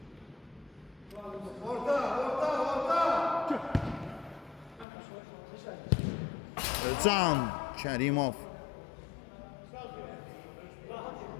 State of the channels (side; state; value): right; drops out; at 4.9 s